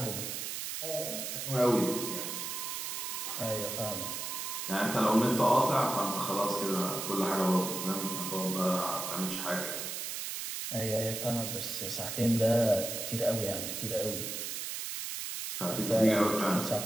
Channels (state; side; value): noise; right; hiss, 4 dB below the sound